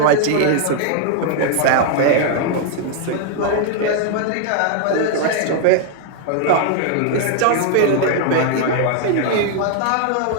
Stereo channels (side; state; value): both; different; correlation 0.00